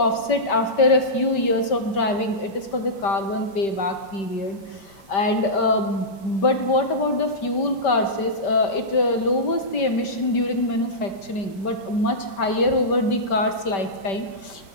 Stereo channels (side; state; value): right; late; 5.2 ms